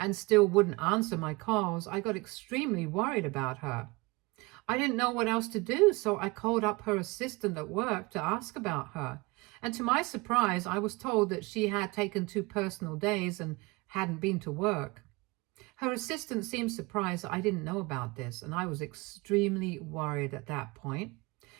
still wouldn't answer my calls, I got extremely worried about her. I didn't know what else to do, so I called up her assistant at work to ask about her. And to my surprise, I was told that she had taken 2 personal days and hadn't been to work. Her assistant seemed surprised that I didn't know about this, and I was extremely worried at that point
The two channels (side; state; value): left; quieter; 24.5 dB